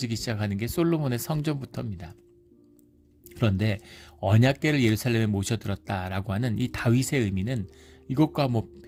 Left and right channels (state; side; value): identical; both; correlation 1.00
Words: 시작하는 게 솔로몬의 성전부터입니다. 그런데 언약궤를 예루살렘에 모셔들었다라고 하는 이 다윗의 의미는 이것과 뭐